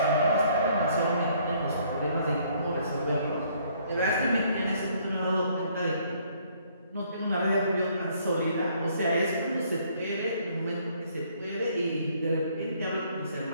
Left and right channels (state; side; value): inverted; both; correlation -0.64